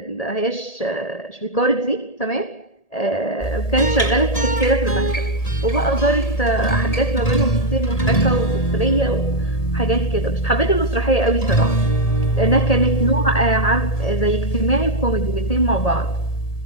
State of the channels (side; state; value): right; late; 1.8 ms